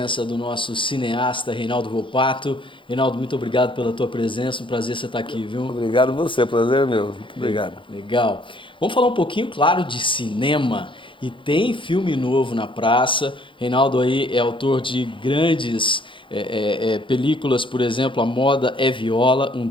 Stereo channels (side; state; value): right; late; 0.24 ms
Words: do nosso cineasta Reinaldo Volpato. Reinaldo, muito obrigado pela tua presença, um prazer você estar aqui, viu? Obrigado você, prazer é meu. Muito obrigado. Legal. Vamos falar um pouquinho, claro, de cinema. E tem filme novo na praça. Reinaldo aí é autor de grandes películas, por exemplo, A Moda é Viola, um